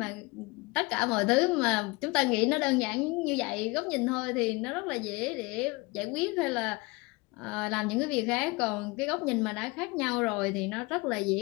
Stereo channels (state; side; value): quieter; right; 24.8 dB